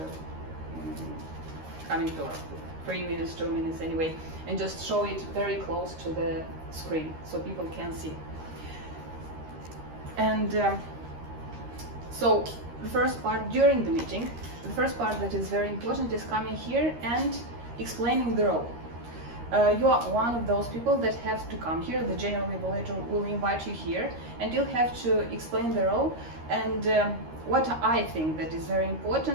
coming to like 3 minutes, 2 minutes anyway, and just show it very close to the screen so people can see. And so the first part during the meeting, the first part that is very important is coming here and explaining the role. You are one of those people that have to come here. The general evaluator will invite you here, and you'll have to explain the role. And what I think that is very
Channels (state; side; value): late; left; 13 ms